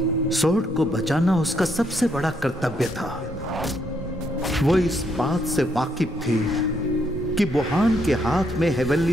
सोर्ड को बचाना उसका सबसे बड़ा कर्तव्य था। वो इस बात से वाकिफ थी कि बुहान के हाथ में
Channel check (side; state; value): both; normal; correlation 0.74